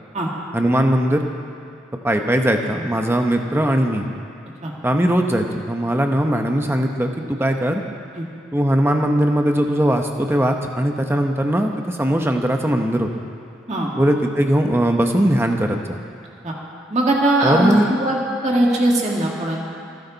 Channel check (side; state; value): both; normal; correlation 0.84